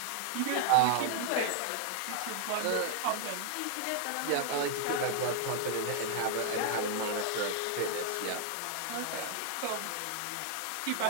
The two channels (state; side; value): different; both; correlation 0.00